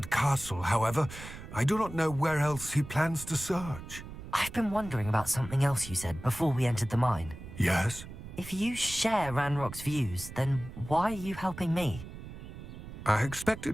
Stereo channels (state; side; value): noise; right; rumble, 12 dB below the sound